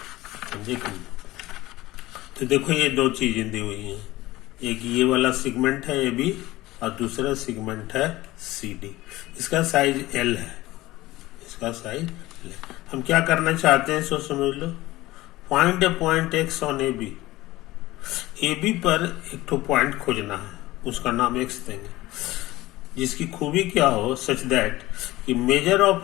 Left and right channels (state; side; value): quieter; right; 18.0 dB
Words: समझे कि नहीं। तो देखो, ये 2 चीजें दी हुई हैं, एक ये वाला सेगमेंट है ए बी और दूसरा सेगमेंट है सी डी। इसका साइज एल है, इसका साइज एल है। हम क्या करना चाहते हैं, सो समझ लो। Find a point X on A B. A B पर एक तो पॉइंट खोजना है, उसका नाम एक्स देंगे, जिसकी खूबी क्या हो, सच दैट कि मेजर